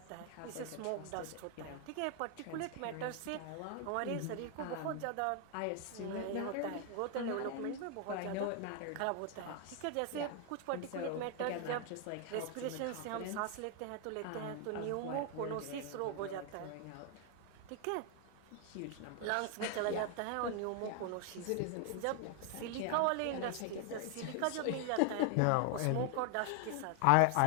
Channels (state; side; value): different; both; correlation 0.00